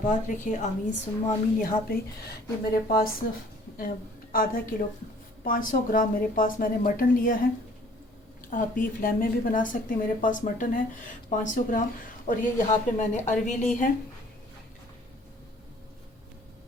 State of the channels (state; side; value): normal; both; correlation 0.55